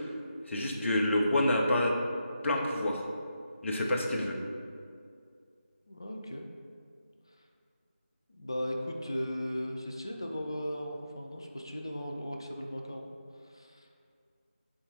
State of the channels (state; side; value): inverted; both; correlation -0.83